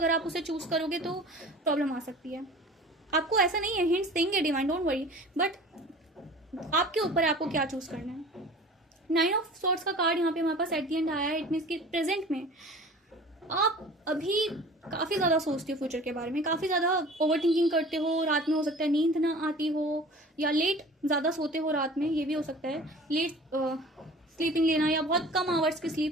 आप उसे चूज करोगे तो प्रॉब्लम आ सकती है। आपको ऐसा नहीं है, हिंट्स देंगे डिवाइन, डोंट वरी, बट आपके ऊपर है आपको क्या चूज करना है। 9 ऑफ सॉर्ड्स का कार्ड यहाँ पे हमारे पास एट द एंड आया है। इट मीन्स कि प्रेजेंट में आप अभी काफ़ी ज़्यादा सोचते हो फ्यूचर के बारे में, काफ़ी ज़्यादा ओवर थिंकिंग करते हो। रात में हो सकता है नींद ना आती हो, या लेट ज़्यादा सोते हो रात में, ये भी हो सकता है। लेट स्लीपिंग लेना या बहुत कम आवर्स की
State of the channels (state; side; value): normal; both; correlation 0.42